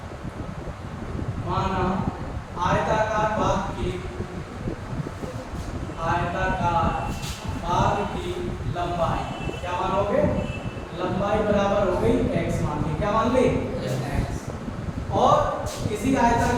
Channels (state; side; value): identical; both; correlation 1.00